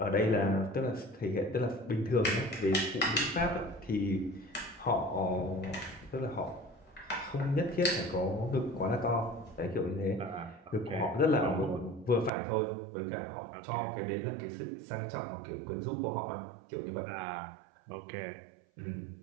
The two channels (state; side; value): drops out; left; at 12.3 s